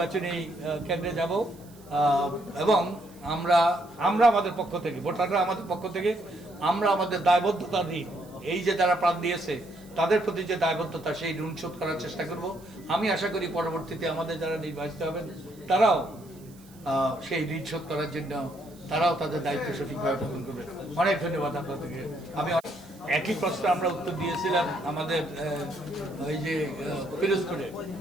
কেন্দ্রে যাব। এবং আমরা আমাদের পক্ষ থেকে, ভোটাররা আমাদের পক্ষ থেকে আমরা আমাদের দায়বদ্ধতা নিই, এই যে যারা প্রাণ দিয়েছে তাদের প্রতি যে দায়বদ্ধতা, সেই ঋণ শোধ করার চেষ্টা করব। আমি আশা করি পরবর্তীতে আমাদের যারা নির্বাচিত হবেন তারাও সেই ঋণ শোধ করার জন্য তারাও তাদের দায়িত্ব সঠিকভাবে পালন করবে। অনেক ধন্যবাদ আপনাদেরকে। আমি একই প্রশ্ন আমরা উত্তর দিয়েছিলাম আমাদের ওই যে পিরোজপুরে,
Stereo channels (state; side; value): noise; right; hiss, 26 dB below the sound